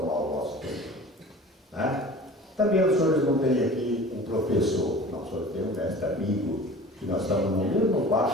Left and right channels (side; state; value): both; normal; correlation 0.41